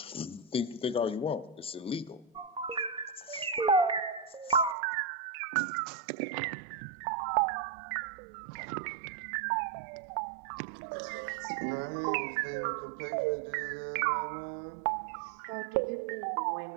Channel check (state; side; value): drops out; left; at 4.8 s